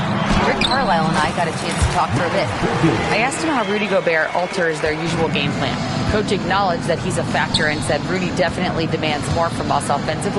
Rick Carlisle and I got a chance to talk for a bit. I asked him how Rudy Gobert alters their usual game plan. Coach acknowledged that he's a factor and said Rudy definitely demands more from us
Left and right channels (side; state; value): both; identical; correlation 1.00